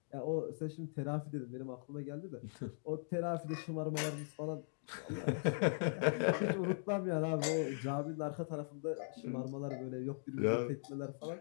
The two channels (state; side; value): silent; right; digital silence